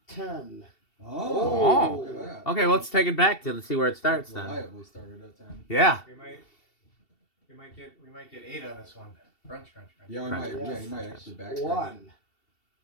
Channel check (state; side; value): late; right; 2.7 ms